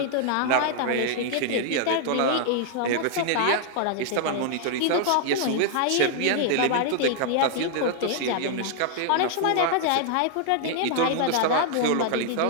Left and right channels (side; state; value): both; different; correlation 0.00